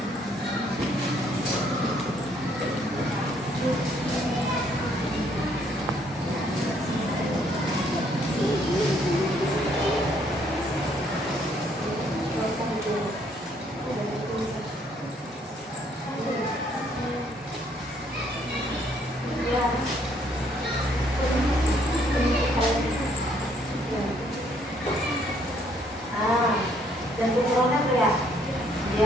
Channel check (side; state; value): both; normal; correlation 0.67